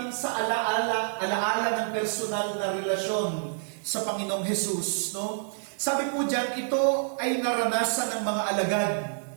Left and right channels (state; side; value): silent; left; digital silence